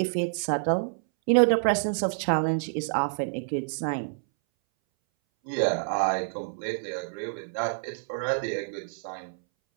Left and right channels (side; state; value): left; silent; 60 dB below the other